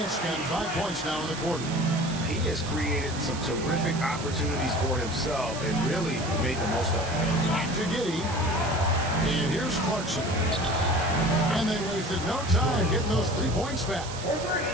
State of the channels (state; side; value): noise; right; hiss, 11 dB below the sound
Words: got 5 points now in the quarter. He has created some terrific opportunities for himself and really made the most of it. Back to Giddey. And here's Clarkson. And they wasted no time getting those 3 points back.